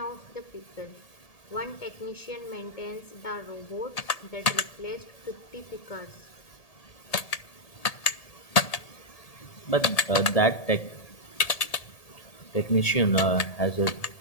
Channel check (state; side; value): late; right; 1.8 ms